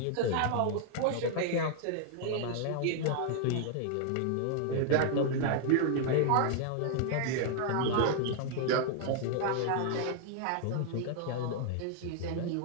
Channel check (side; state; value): both; different; correlation 0.00